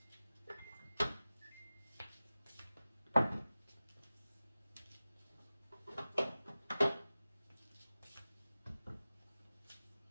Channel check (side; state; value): both; inverted; correlation -0.96